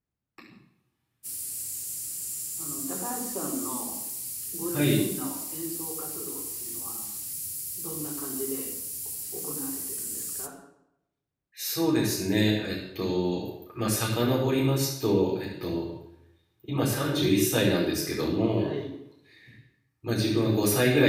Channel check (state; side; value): identical; both; correlation 1.00